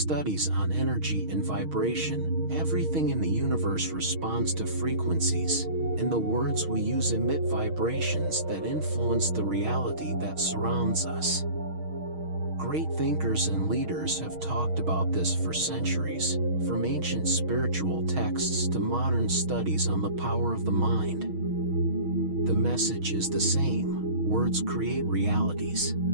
on energy and vibration, everything in the universe responds to frequencies, and the words we use emit vibrations that influence the reality that surrounds us. Great thinkers and leaders have talked about this for centuries, from ancient spiritual texts to modern studies on the power of the mind. The message is the same. Words create realities.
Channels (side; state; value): left; late; 6.4 ms